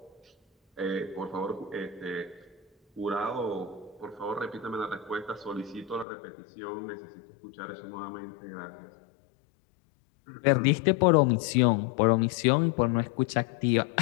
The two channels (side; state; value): right; drops out; at 6.1 s